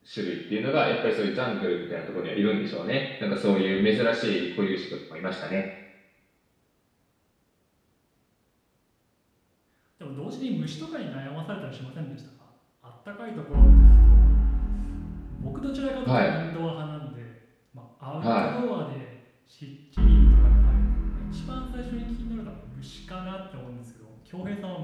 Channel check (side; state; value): both; identical; correlation 1.00